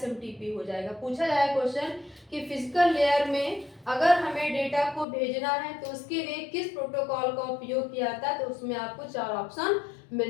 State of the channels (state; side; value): drops out; right; at 5.1 s